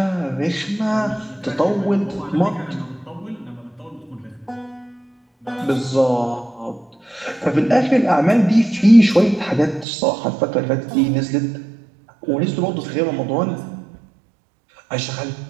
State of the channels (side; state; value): left; drops out; at 9.9 s